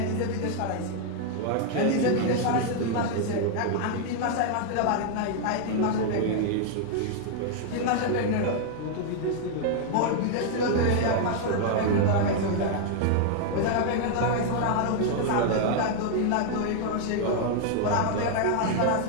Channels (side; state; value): both; different; correlation 0.00